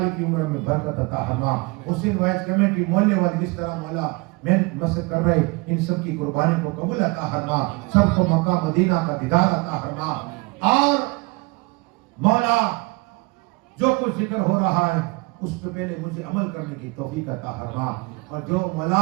کی عمر میں برکت عطا فرما. حسین وائز کمیٹی محلے والے جس طرح مولا محنت مسجد کر رہے ان سب کی قربانی کو قبول عطا فرما. سب کو مکہ مدینہ کا دیدار عطا فرما. اور مولا جو کچھ ذکر ہو رہا ہے اس پہ پہلے مجھے عمل کرنے کی توفیق عطا فرما. اور جو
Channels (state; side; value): quieter; left; 26.6 dB